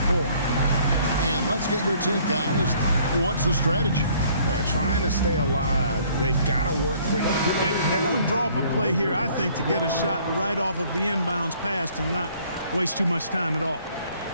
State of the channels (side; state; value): both; inverted; correlation -0.59